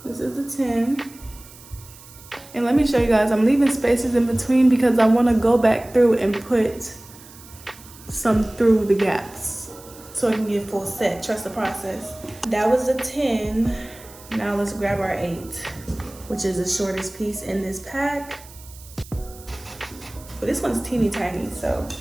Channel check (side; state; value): right; noise; hiss, 20 dB below the sound